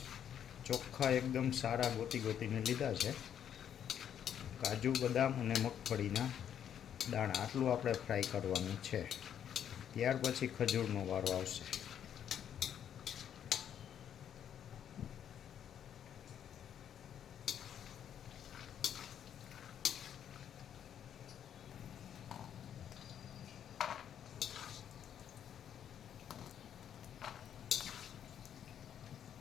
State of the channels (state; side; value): quieter; right; 9.3 dB